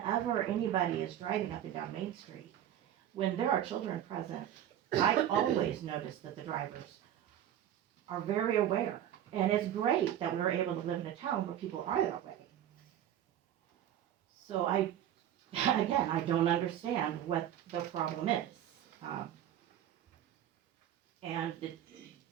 anybody is driving up and down Main Street, when there are children present, I always notice that the drivers are very aware. And it's great that we're able to live in a town where people are that way. So I don't understand what the problem is. And the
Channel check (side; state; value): left; quieter; 11.1 dB